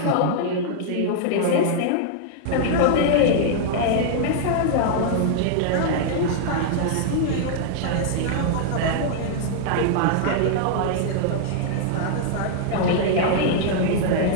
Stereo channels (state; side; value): different; both; correlation -0.01